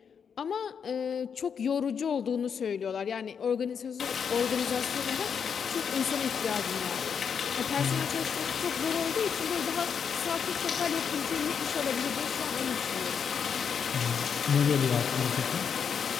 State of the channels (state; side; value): quieter; right; 6.9 dB